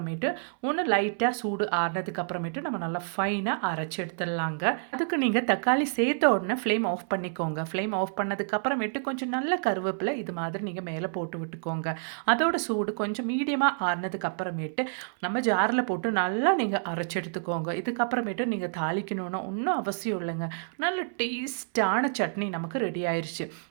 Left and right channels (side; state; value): left; silent; 59 dB below the other